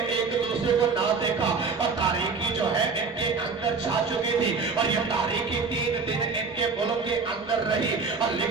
एक दूसरे को ना देखा और तारीकी जो है इनके अंदर छा चुकी थी। और ये तारीकी 3 दिन इनके मुल्क के अंदर रही। और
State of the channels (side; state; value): left; quieter; 4.7 dB